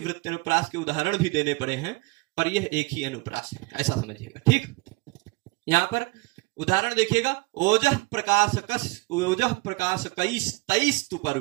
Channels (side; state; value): left; quieter; 24.5 dB